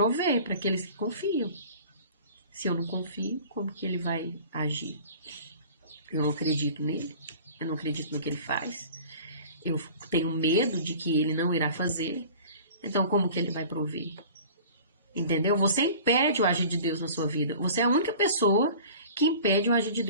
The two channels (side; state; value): both; inverted; correlation -0.43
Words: para aqueles que confiam. Se eu não confio, como que ele vai agir? Eu não acredito nele, eu não acredito no que ele faz. Eu tenho medo de que ele não irá fazer. Então, como que ele vai prover? Entendeu? Você impede o agir de Deus na sua vida. Você é a única pessoa que impede o agir de